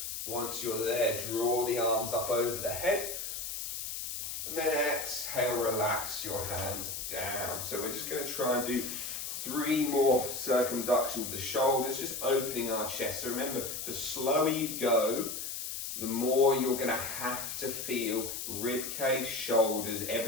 Once you're there, draw the arms up over the head. And then exhale, relax your hands down. So we're just going to try and do 3 more circumductions of the shoulders, just opening our chest. So remember, the slower you go, the more you're going to have to feel rib cage, shoulders,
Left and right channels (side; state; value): left; noise; hiss, 5 dB below the sound